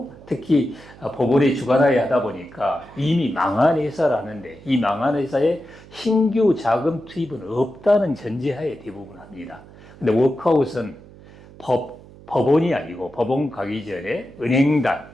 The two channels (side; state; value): right; noise; hum, 21 dB below the sound